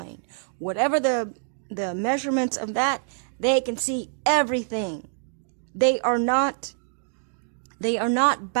Whatever the measurements of that, they can see everything. They are not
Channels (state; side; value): silent; left; digital silence